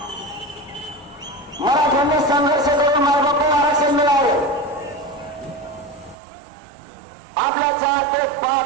मराठ्यांनी संघर्ष करून मायबापाला आरक्षण मिळाले. आपल्या 4 ते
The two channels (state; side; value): drops out; left; at 6.2 s